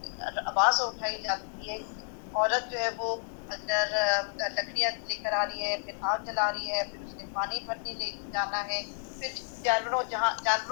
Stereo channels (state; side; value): silent; right; digital silence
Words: آواز اٹھائی جاتی ہے. عورت جو ہے وہ اگر لکڑیاں لے کر آ رہی ہے, پھر آگ جلا رہی ہے, پھر اس نے پانی بھرنے لے جانا ہے, پھر جانوروں